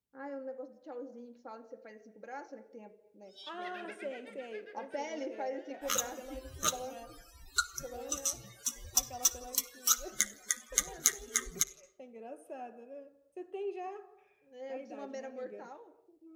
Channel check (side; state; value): both; identical; correlation 1.00